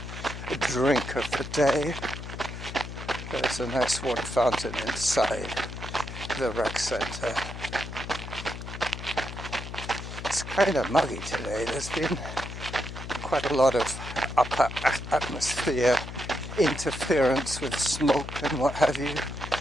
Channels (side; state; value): left; noise; hum, 9 dB below the sound